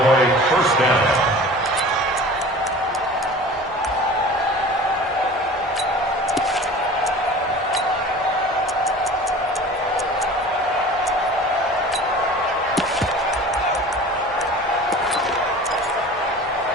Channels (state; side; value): normal; both; correlation 0.40